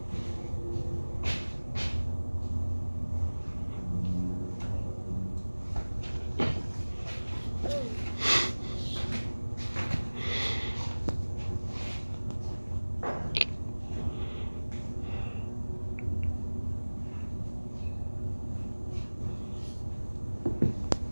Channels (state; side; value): inverted; both; correlation -1.00